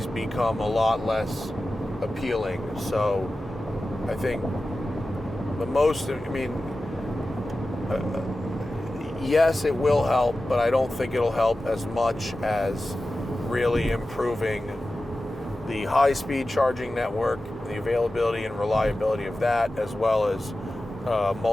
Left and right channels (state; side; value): normal; both; correlation 0.94